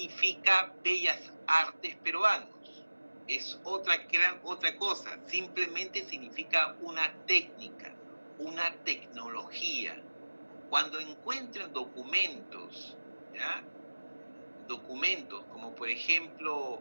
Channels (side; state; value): both; inverted; correlation -1.00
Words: bellas artes peruanos. Es otra cosa. Simplemente significa una técnica, una tecnología. Cuando encuentren documentos, ¿ya? Documentos como por ejemplo